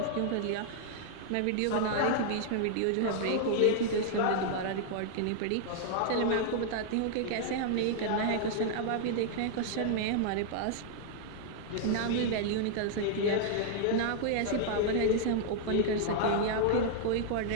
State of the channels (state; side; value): different; both; correlation -0.01